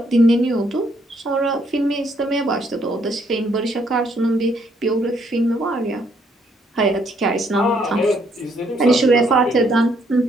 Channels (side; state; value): both; normal; correlation 0.70